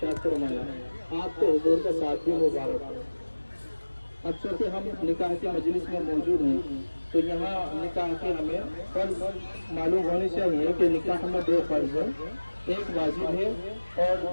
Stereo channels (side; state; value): both; inverted; correlation -1.00